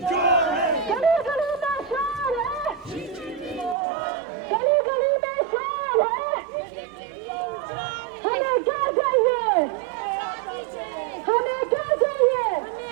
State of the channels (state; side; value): drops out; left; at 3.8 s